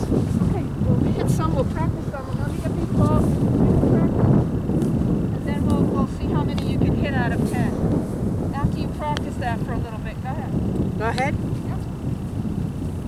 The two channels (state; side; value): identical; both; correlation 1.00